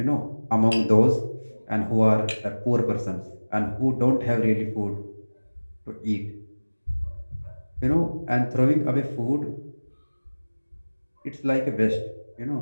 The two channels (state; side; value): inverted; both; correlation -1.00